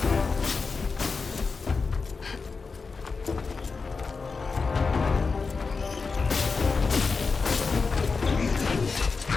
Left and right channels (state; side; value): quieter; right; 4.6 dB